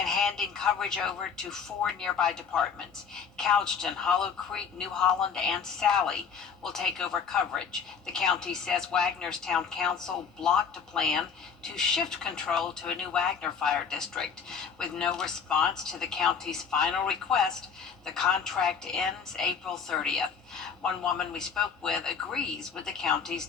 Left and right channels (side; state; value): right; quieter; 6.3 dB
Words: handing coverage over to 4 nearby departments. Couchton, Hollow Creek, New Holland, and Sally will take over coverage. The county says Wagner's town council blocked a plan to shift control to a new Wagner Fire District. With no response to the county's final request, the contract ends April 30th. One woman we spoke with agrees with the county's